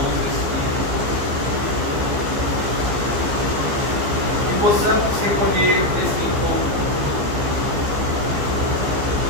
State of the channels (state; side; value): late; left; 15 ms